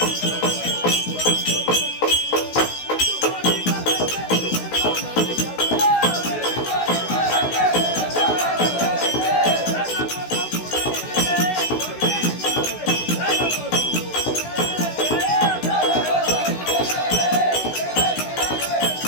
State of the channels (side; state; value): right; late; 16 ms